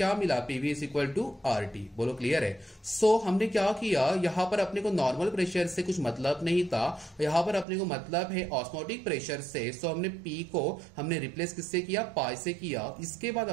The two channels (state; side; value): drops out; left; at 7.7 s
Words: मिला? PV is equal to RT। बोलो क्लियर है? सो हमने क्या किया, यहां पर अपने को नॉर्मल प्रेशर से कुछ मतलब नहीं था, यहां पर अपने को मतलब है ऑस्मोटिक प्रेशर से। सो हमने P को हमने रिप्लेस किससे किया? पाई से किया। इसके बाद